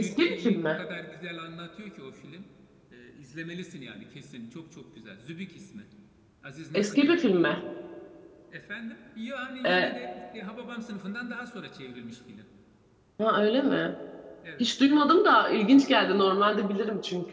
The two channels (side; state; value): both; identical; correlation 1.00